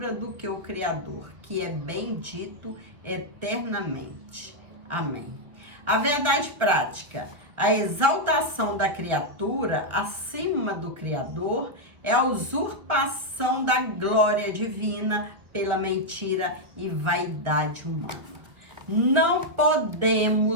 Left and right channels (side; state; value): left; late; 1.7 ms